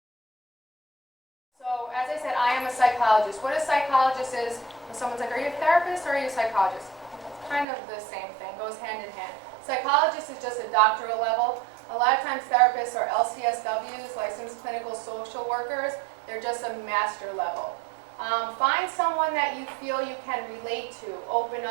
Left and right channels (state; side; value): drops out; left; at 7.7 s